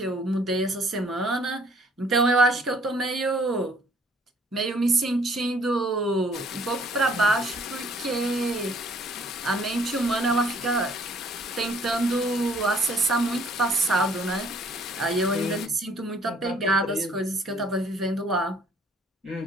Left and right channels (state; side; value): normal; both; correlation 0.60